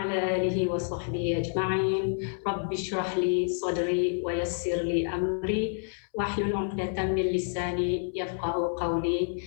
آله وصحبه أجمعين. رب اشرح لي صدري ويسر لي أمري واحلل عقدة من لساني يفقه قولي.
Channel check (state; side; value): silent; right; 59 dB below the other